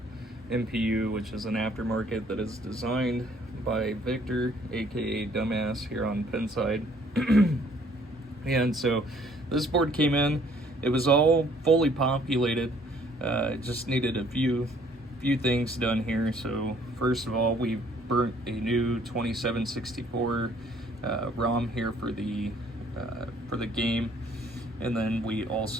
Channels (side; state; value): both; normal; correlation 0.60